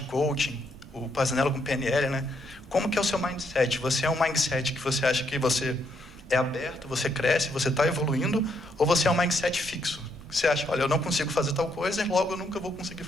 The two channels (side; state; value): both; normal; correlation 0.75